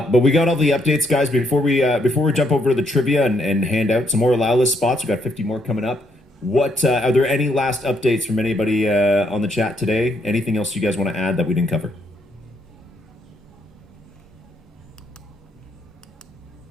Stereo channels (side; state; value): both; normal; correlation 0.73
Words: we got all the updates, guys. Before we jump over to the trivia and hand out some more allow list spots, we got 50 more coming up. What are there any last updates from anybody on the chat today? Anything else you guys want to add that we didn't cover?